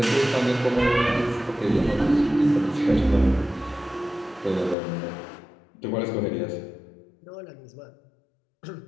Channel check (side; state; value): right; drops out; at 4.8 s